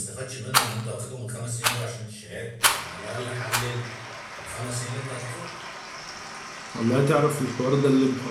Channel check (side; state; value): both; identical; correlation 1.00